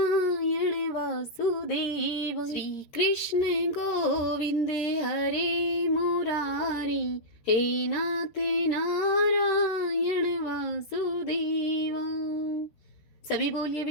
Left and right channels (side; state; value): right; late; 13 ms